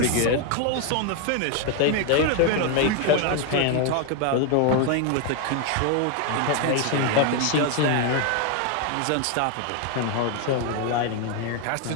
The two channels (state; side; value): different; both; correlation 0.01